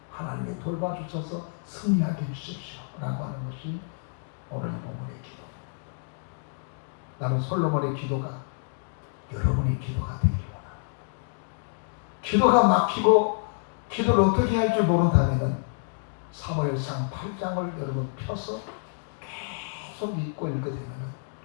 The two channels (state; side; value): silent; right; digital silence